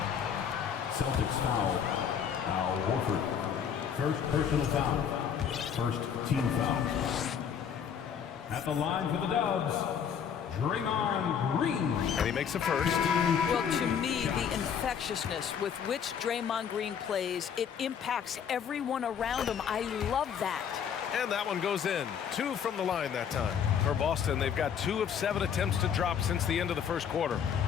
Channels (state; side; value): quieter; right; 7.8 dB